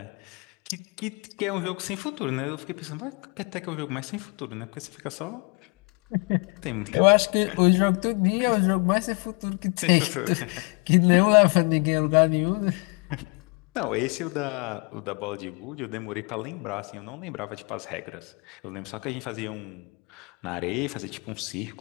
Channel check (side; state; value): right; quieter; 33.1 dB